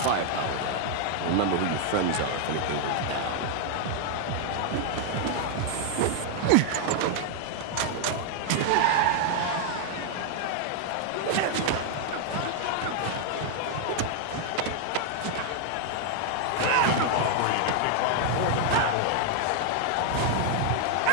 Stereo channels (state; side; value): different; both; correlation 0.00